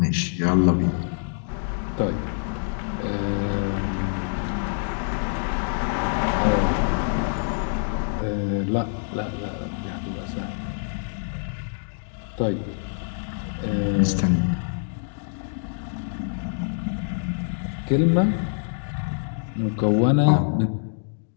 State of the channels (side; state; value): right; silent; digital silence